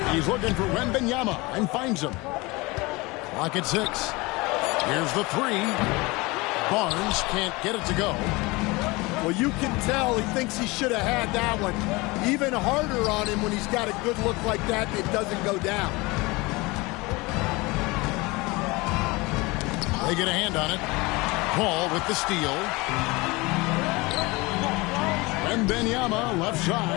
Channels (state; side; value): quieter; right; 23.8 dB